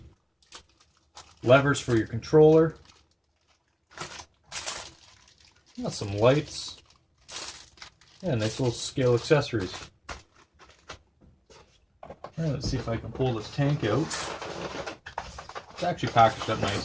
levers for your controller. Got some lights. Yeah, nice little scale accessories. Alright, let's see if I can pull this tank out. It's actually packaged up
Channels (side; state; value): both; identical; correlation 1.00